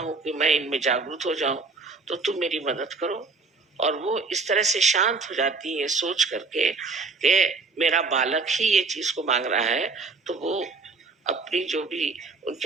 कि मैं इनमें जागरूक हो जाऊं, तो तुम मेरी मदद करो। और वो इस तरह से शांत हो जाती है सोच करके कि मेरा बालक ही ये चीज को मांग रहा है, तो वो अपनी जो भी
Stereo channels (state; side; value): quieter; left; 4.1 dB